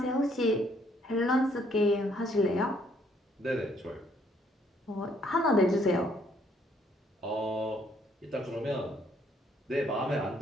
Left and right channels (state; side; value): normal; both; correlation 0.67